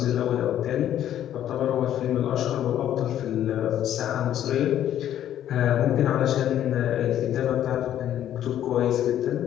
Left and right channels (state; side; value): quieter; right; 11.2 dB